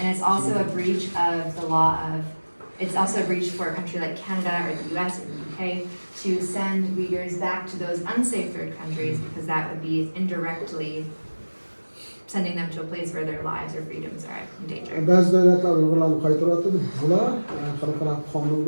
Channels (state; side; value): inverted; both; correlation -1.00